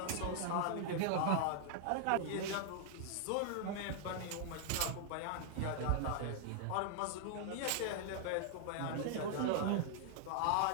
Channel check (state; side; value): different; both; correlation 0.00